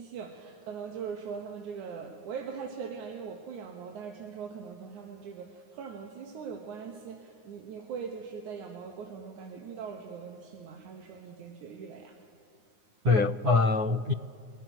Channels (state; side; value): late; left; 9.6 ms